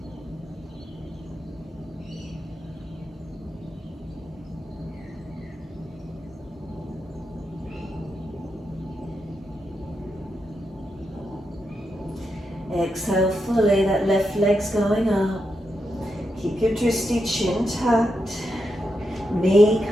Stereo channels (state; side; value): normal; both; correlation 0.85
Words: Exhale fully, that left leg's going up. Keep your drishti, chin tucked. Knee